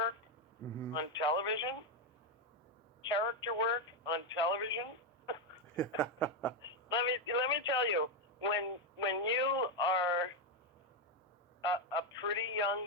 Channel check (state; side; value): normal; both; correlation 0.05